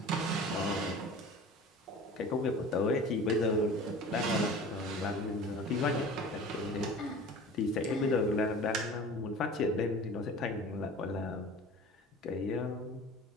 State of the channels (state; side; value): normal; both; correlation 0.40